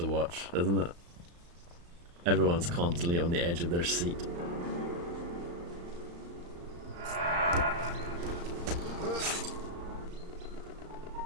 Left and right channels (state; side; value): late; left; 35 ms